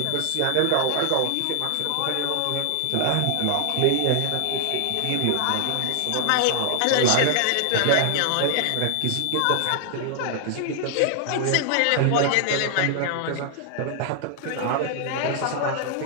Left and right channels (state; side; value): different; both; correlation 0.00